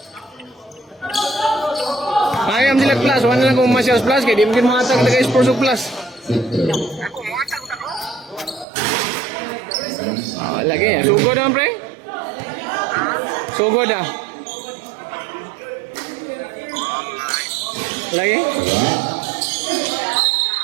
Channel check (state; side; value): drops out; left; at 8.7 s